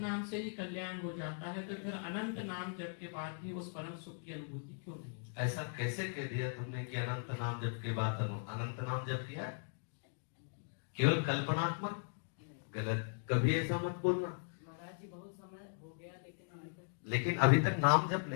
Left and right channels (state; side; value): silent; right; digital silence